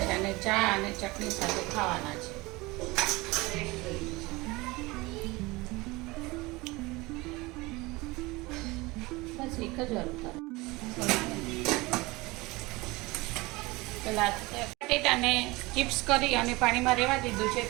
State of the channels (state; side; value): quieter; left; 22.5 dB